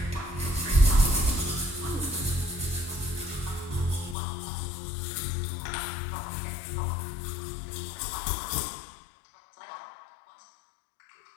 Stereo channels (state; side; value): drops out; right; at 4.2 s